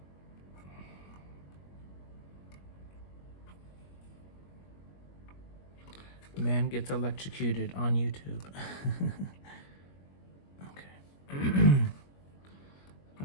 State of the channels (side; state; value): right; late; 21 ms